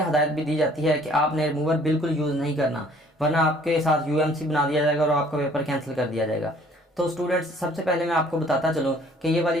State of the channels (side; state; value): both; normal; correlation 0.57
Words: हदायत भी दी जाती है कि आपने रिमूवर बिल्कुल यूज़ नहीं करना, वरना आपके साथ यूएमसी बना दिया जाएगा और आपका पेपर कैंसिल कर दिया जाएगा। तो स्टूडेंट्स, सबसे पहले मैं आपको बताता चलूँ कि ये वाली